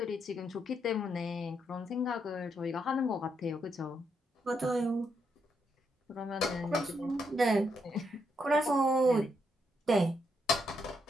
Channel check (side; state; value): both; normal; correlation 0.78